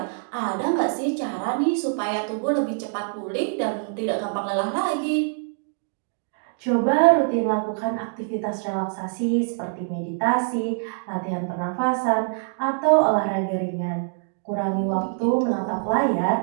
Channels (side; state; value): left; silent; digital silence